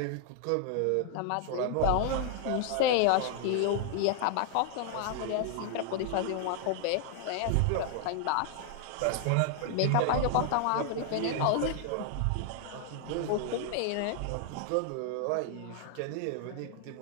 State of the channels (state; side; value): different; both; correlation 0.00